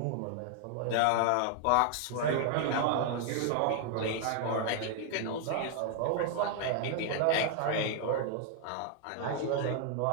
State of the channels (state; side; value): different; both; correlation 0.00